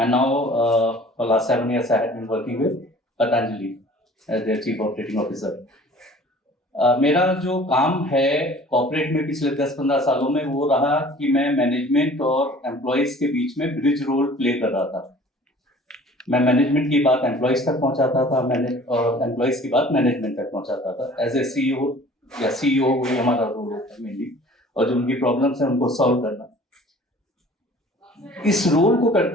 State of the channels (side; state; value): both; normal; correlation 0.48